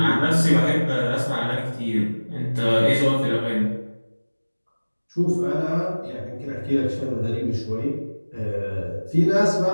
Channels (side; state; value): both; inverted; correlation -1.00